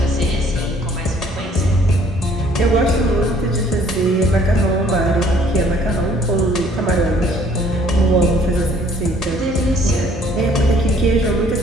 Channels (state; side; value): normal; both; correlation 0.59